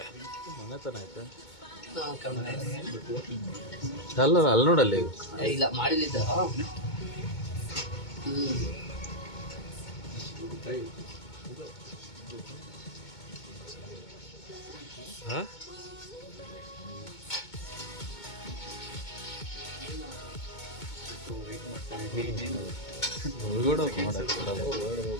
ಅಲ್ಲ ಅಲ್ಲಿ ನೋಡಲ್ಲಿ ಇಲ್ಲ ಮಾಡಿಲ್ಲಿದ್ದ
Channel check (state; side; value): late; right; 2.2 ms